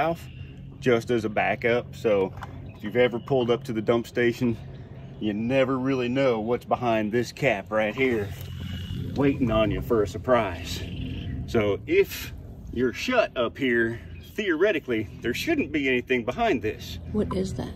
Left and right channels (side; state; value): both; identical; correlation 1.00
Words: just as a backup. So if you've ever pulled up to the dump station, you never really know what's behind this cap right here waiting on you for a surprise. So if you're shut up here, theoretically there shouldn't be anything behind this. What is that?